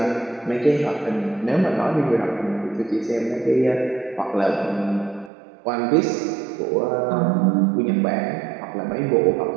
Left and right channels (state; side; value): drops out; left; at 5.3 s